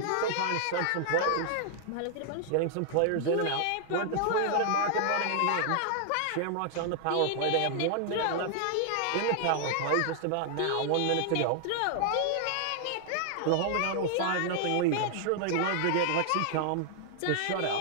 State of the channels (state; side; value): different; both; correlation 0.00